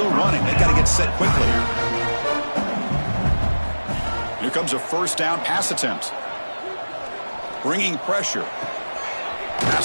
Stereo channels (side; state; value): both; inverted; correlation -1.00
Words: running. They've got to get set quickly. Here comes a 1st down pass attempt. Bringing pressure.